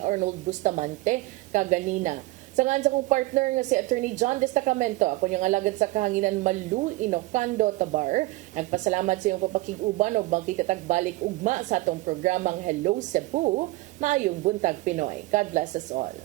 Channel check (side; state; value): left; quieter; 19.6 dB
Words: Arnold Bustamante kaganina. Sa ngan sa kong partner nga si Attorney John Destacamento, ako yung alagad sa kahanginan Malu Inocando Tabar. Nagpasalamat sa iyong papakiguban ug magkitatak balik ugma sa atong programang Hello Cebu, maayong buntag Pinoy. God bless us all.